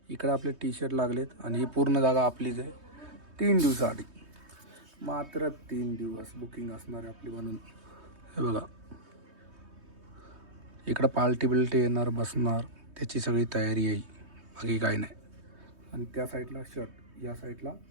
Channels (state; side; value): late; left; 3.2 ms